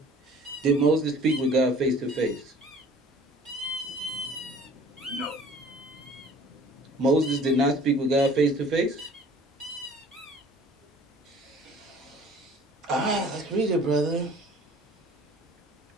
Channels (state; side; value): normal; both; correlation 0.49